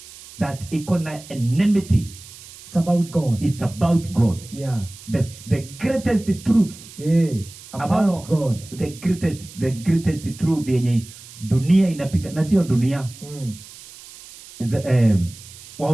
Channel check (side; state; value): right; noise; hiss, 18 dB below the sound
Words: that iko na enmity, it's about God. It's about God. The greatest truth about God. The greatest truth yenye dunia inapiga, na sio dunia.